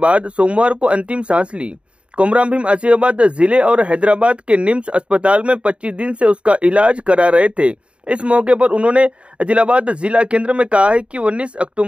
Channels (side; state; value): left; late; 0.059 ms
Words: सोमवार को अंतिम सांस ली। कोमराम भीम आसिफाबाद जिले और हैदराबाद के निम्स अस्पताल में 25 दिन से उसका इलाज करा रहे थे। इस मौके पर उन्होंने आदिलाबाद जिला केंद्र में कहा है कि 19